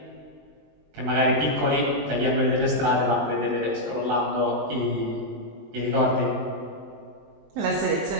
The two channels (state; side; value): late; left; 20 ms